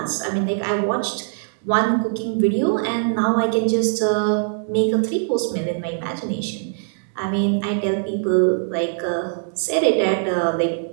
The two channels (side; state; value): left; silent; digital silence